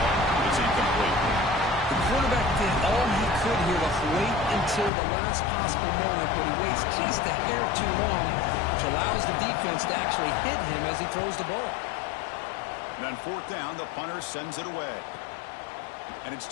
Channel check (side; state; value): right; drops out; at 4.9 s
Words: It's incomplete. The quarterback did all he could here to wait until the last possible moment, but he waits just a hair too long, which allows the defense to actually hit him as he throws the ball. And on fourth down, the punter sends it away. And it's